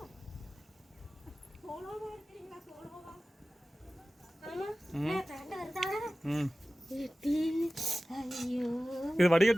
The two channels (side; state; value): both; normal; correlation 0.97